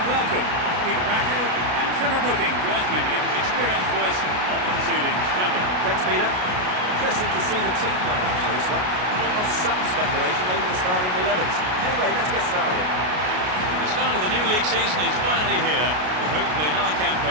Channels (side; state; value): left; late; 33 ms